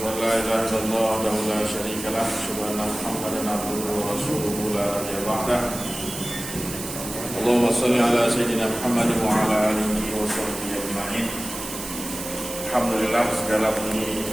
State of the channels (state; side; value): noise; right; hiss, 9 dB below the sound